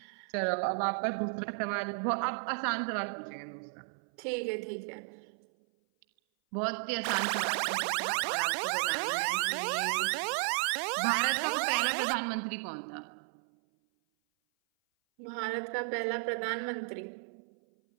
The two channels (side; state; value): left; silent; 55 dB below the other